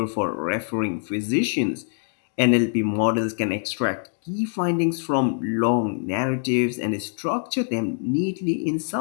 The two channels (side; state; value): right; silent; 61 dB below the other